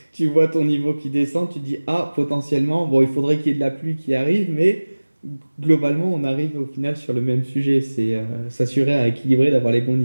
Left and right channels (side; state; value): both; inverted; correlation -1.00